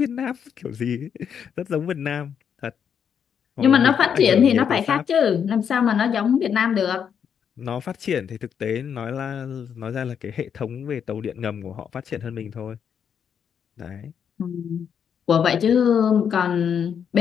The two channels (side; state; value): right; quieter; 7.7 dB